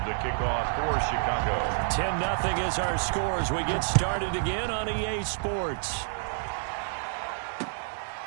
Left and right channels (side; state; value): left; silent; digital silence